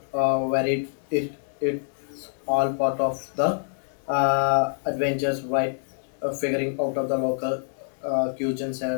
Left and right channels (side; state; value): right; silent; digital silence